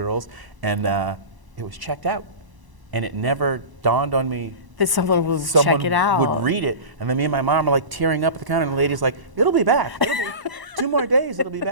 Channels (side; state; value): left; late; 1.0 ms